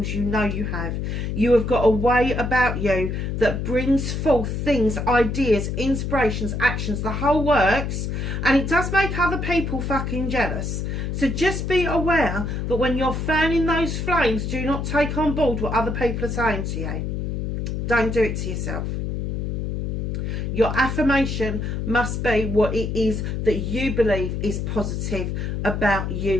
You know you have. You have got a way about you that brings forth things, ideas, inspirations, actions, the whole works. And it does make other people fucking jealous. So just be aware that when you're fanning those flames, do not take on board what other people are saying to you. Don't do it to yourself. Your affirmation must be what it is that you believe is positive about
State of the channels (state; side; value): noise; left; hum, 2 dB below the sound